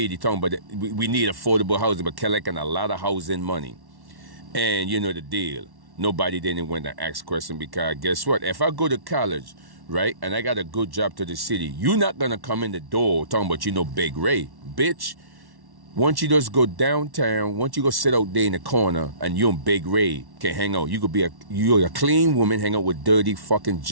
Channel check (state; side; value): late; left; 1.1 ms